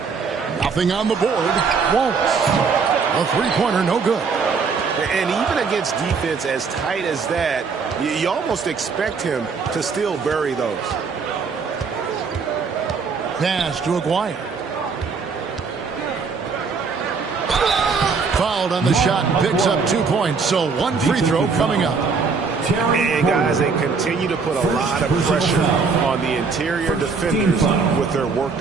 Nothing on the board. Wallace. A three-pointer, no good. And even against defense as tight as that, you almost expect him to still bury those. Pass to Aguirre. Fouled on the shot, picks up 2 points. So 1 free throw coming up. And guys, they continue to put a lot of pressure on the interior defenders with their work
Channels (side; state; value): left; quieter; 5.1 dB